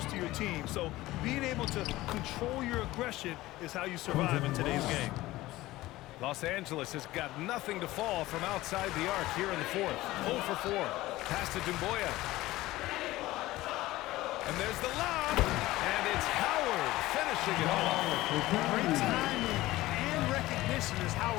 to your team. So being able to control your aggression is how you survive in today's game. Los Angeles has got nothing to fall from outside the arc here in the fourth. 0 for 4. Pass to Dumboya. And there's the lob. And it's Howard finishing it off. Great timing and recognition as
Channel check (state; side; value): quieter; right; 17.6 dB